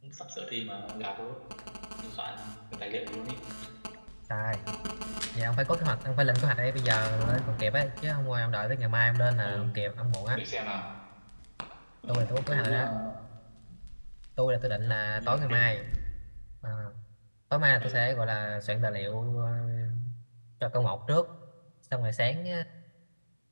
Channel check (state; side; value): inverted; both; correlation -1.00